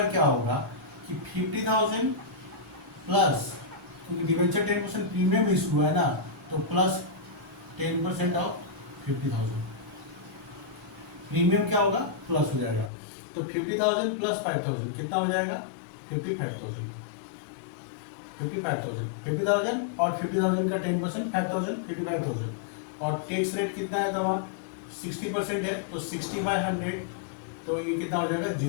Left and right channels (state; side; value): drops out; right; at 12.9 s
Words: क्या होगा कि 50,000 प्लस, क्योंकि डिवेंचर 10% प्रीमियम इशू हुआ है ना, तो प्लस 10% ऑफ 50,000। प्रीमियम क्या होगा, प्लस हो जाएगा। तो 50,000 प्लस 5,000 कितना हो जाएगा, 55,000। 50,000 और 50,000 का 10% 5,000, 55,000। और टैक्स रेट कितना है वहाँ 60% है, तो 60/100, तो ये कितना हो जाएगा